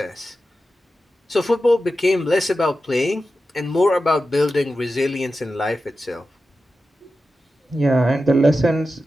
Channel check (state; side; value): normal; both; correlation 0.92